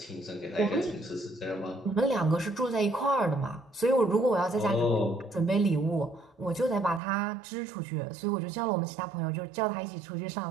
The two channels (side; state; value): left; drops out; at 7.0 s